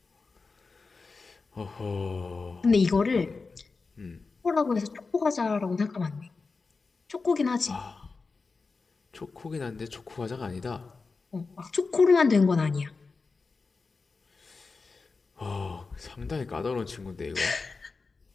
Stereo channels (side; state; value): right; quieter; 4.3 dB